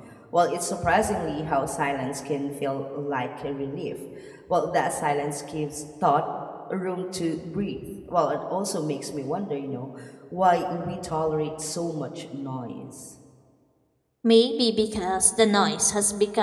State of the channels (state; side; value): identical; both; correlation 1.00